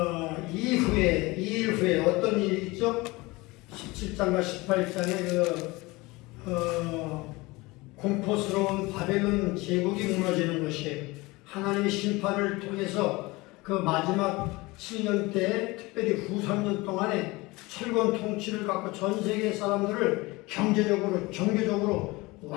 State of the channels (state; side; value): quieter; right; 22.5 dB